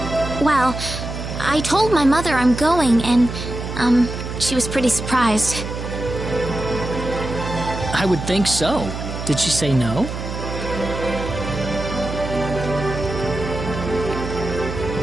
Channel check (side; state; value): right; noise; hum, 6 dB below the sound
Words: Well, I told my mother I'm going, and, she was pretty surprised. I would think so. Did she say no?